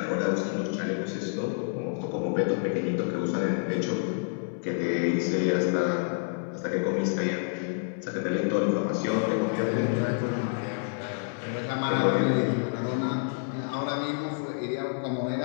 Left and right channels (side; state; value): right; silent; digital silence